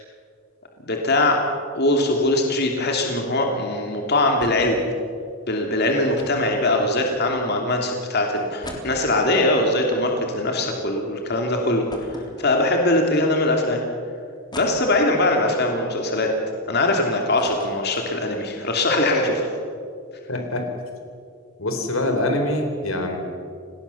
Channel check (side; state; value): both; normal; correlation -0.03